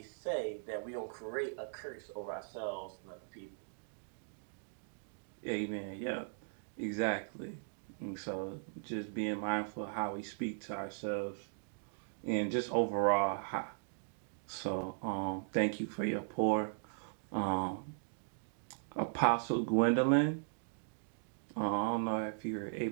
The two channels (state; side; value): silent; left; digital silence